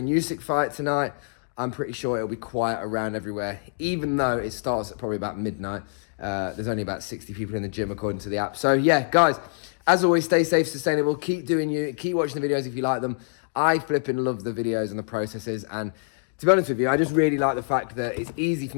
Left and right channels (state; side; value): silent; right; digital silence